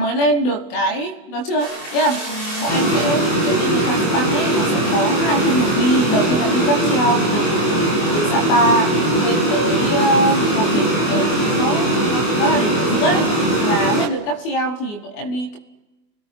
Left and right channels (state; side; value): late; right; 24 ms